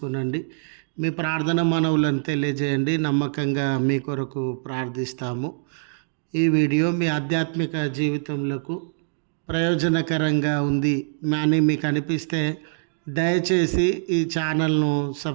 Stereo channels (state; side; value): silent; left; digital silence